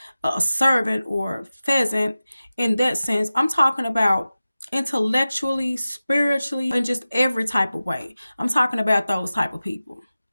a servant or pheasant in that sense. I'm talking about intellectually, spiritually, and just every type of way. I'm talking about those type of people.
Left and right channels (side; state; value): both; inverted; correlation -0.95